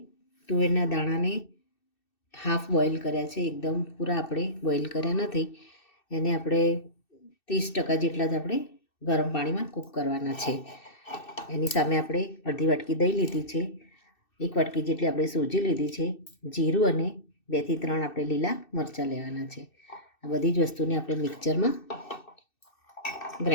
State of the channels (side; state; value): right; late; 2.6 ms